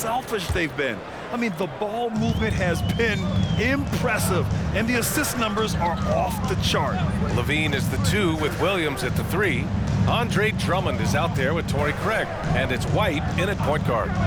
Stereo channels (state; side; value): identical; both; correlation 1.00